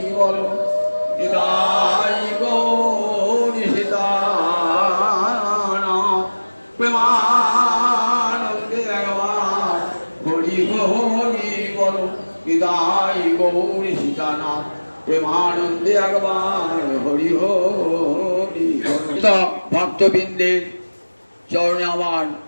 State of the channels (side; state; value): both; inverted; correlation -1.00